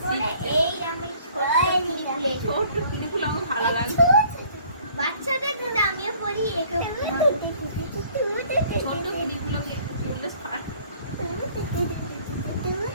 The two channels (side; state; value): both; inverted; correlation -0.56